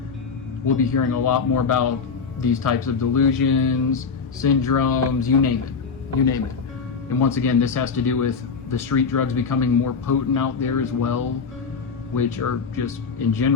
we'll be hearing a lot more about these types of delusions, syndromes, you name it. And once again, this has to do with the street drugs becoming more potent out there as well, which are just, in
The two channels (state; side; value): quieter; right; 5.4 dB